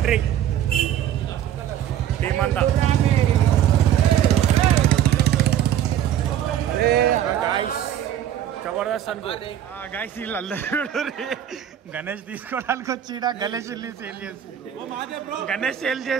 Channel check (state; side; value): quieter; left; 10.6 dB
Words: టీమ్ అంతా. జబర్దస్త్ అనుకో. గైస్, వీళ్ళందరూ గణేష్ తీసుకోవడానికి వచ్చి గణేష్ సేల్ చేస్తారు. గణేష్ సేల్